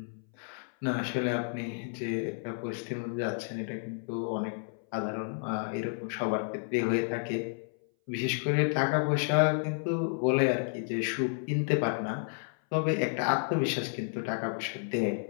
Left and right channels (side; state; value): right; silent; 57 dB below the other